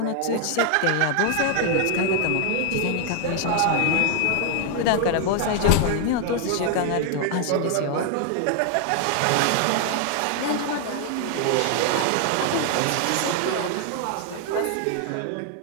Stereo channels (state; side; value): different; both; correlation 0.00